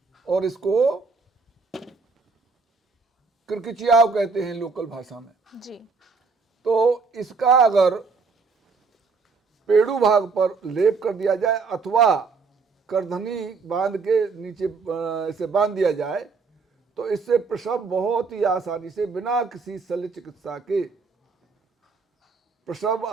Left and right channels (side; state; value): left; quieter; 4.6 dB